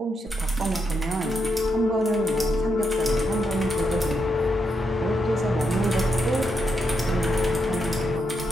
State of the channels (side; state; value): both; normal; correlation 0.82